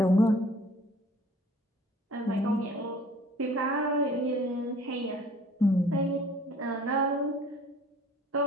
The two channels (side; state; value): both; normal; correlation 0.52